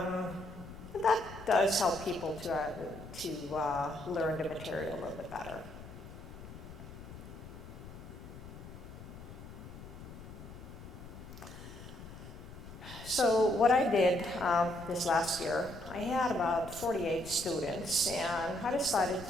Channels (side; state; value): left; noise; rumble, 14 dB below the sound